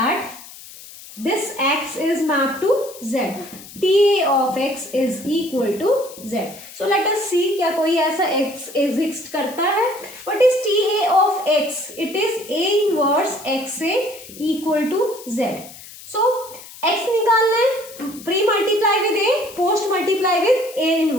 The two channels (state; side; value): noise; left; hiss, 17 dB below the sound